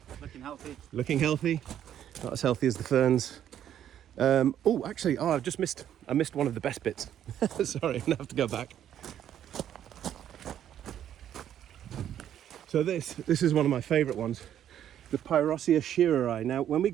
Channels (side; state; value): left; quieter; 10.5 dB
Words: Looking healthy. Looking healthy. Not as healthy as the ferns. Actually, I missed one of the best bits. Sorry, I'm gonna have to go back. So this is one of my favourite ones, the Pyrosia sheareri. Now, when we